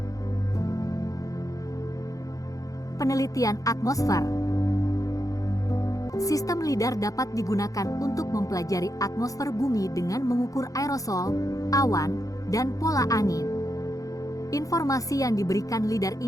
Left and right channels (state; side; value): late; right; 0.17 ms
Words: Penelitian atmosfer. Sistem lidar dapat digunakan untuk mempelajari atmosfer bumi dengan mengukur aerosol, awan, dan pola angin. Informasi yang diberikan lidar